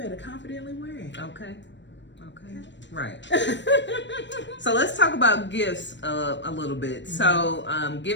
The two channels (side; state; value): right; late; 0.53 ms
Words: confidently wear it. Okay. Right. So let's talk about gifts a little bit. So